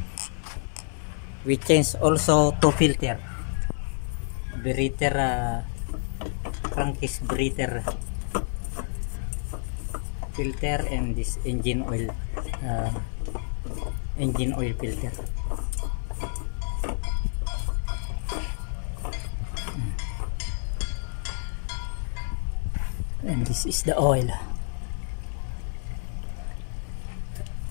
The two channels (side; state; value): right; silent; 59 dB below the other